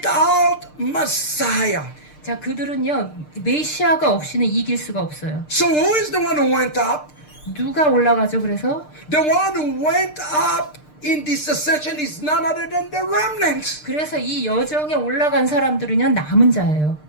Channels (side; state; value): right; late; 6.6 ms